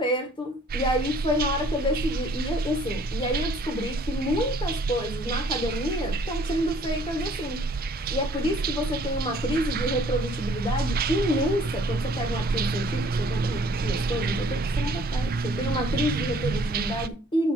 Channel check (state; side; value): normal; both; correlation 0.58